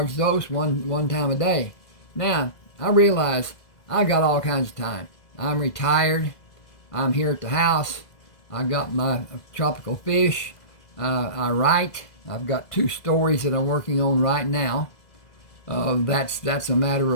dose one time a day. Now, I realize I got all kinds of time. I'm retired. I'm here at the house. I got my tropical fish. I write. I've got 2 stories that I'm working on right now. That's a matter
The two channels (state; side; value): late; right; 2.0 ms